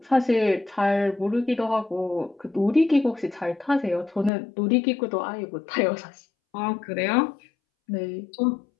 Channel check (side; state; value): right; drops out; at 4.3 s